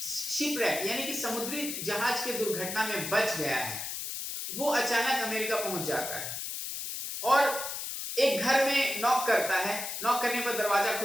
शिपरेक यानी कि समुद्री जहाज के दुर्घटना में बच गया है, वो अचानक अमेरिका पहुंच जाता है और एक घर में नॉक करता है। नॉक करने पर दरवाजा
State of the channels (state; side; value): noise; left; hiss, 5 dB below the sound